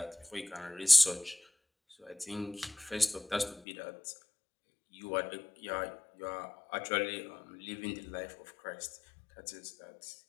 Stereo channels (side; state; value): right; drops out; at 3.6 s